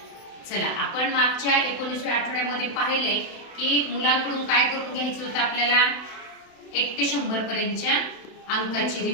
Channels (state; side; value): late; right; 31 ms